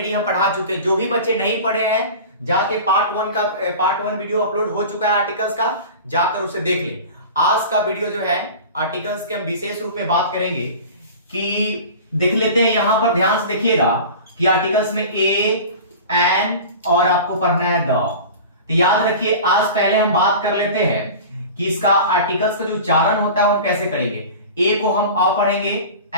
हम पढ़ा चुके। जो भी बच्चे नहीं पढ़े हैं जाके पार्ट वन वीडियो अपलोड हो चुका है आर्टिकल्स का, जाकर उसे देख ले। आज का वीडियो जो है आर्टिकल्स के हम विशेष रूप में बात करेंगे कि देख लेते हैं। यहां पर ध्यान से देखिएगा कि आर्टिकल्स में ए, एन और आपको पढ़ना है द। तो याद रखिए, आज पहले हम बात कर लेते हैं कि इसका आर्टिकल्स का जो उच्चारण होता है वो कैसे करेंगे। ए को हम अ पढ़ेंगे,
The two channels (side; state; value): both; inverted; correlation -0.36